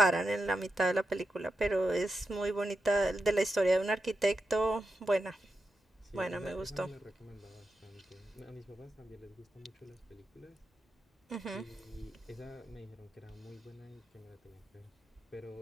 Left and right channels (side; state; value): both; normal; correlation 0.88